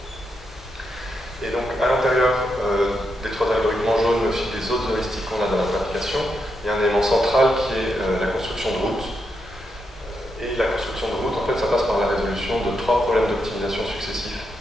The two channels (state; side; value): normal; both; correlation 0.83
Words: Et donc à l'intérieur des trois algorithmes en jaune, mais aussi des autres heuristiques qu'on a dans notre application, il y a un élément central qui est la construction de routes. Et la construction de routes, en fait, ça passe par la résolution de trois problèmes d'optimisation successifs.